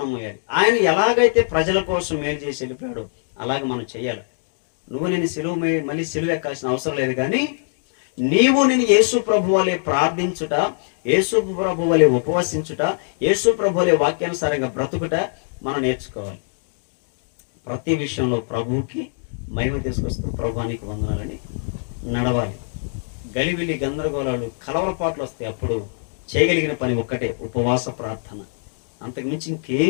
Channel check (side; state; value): right; silent; digital silence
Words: మోయాలి. ఆయన ఎలాగైతే ప్రజల కోసం మేలు చేసి వెళ్ళిపోయాడో అలాగే మనం చేయాలి. నువ్వు నేను శిలువ మళ్ళీ శిలువ ఎక్కాల్సిన అవసరం లేదు, కానీ నీవు నేను యేసు ప్రభు వలె ప్రార్థించుట, యేసు ప్రభు వలె ఉపవసించుట, యేసు ప్రభు వలె వాక్యానుసారంగా బ్రతుకుట మనం నేర్చుకోవాలి. ప్రతి విషయంలో ప్రభువుకి మహిమ తీసుకొస్తూ ప్రభువానికి వందనాలని నడవాలి. గలిబిలి గందరగోళాలు కలవరపాట్లు వస్తాయి. అప్పుడు చేయగలిగిన పని ఒక్కటే, ఉపవాస ప్రార్థన. అంతకు మించి